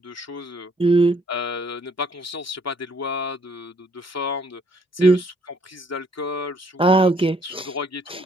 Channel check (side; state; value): both; normal; correlation 0.65